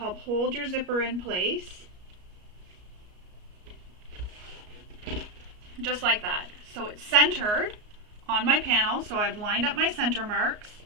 hold your zipper in place. just like that. So it's centered on my panel, so I've lined up my center marks,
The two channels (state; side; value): late; left; 33 ms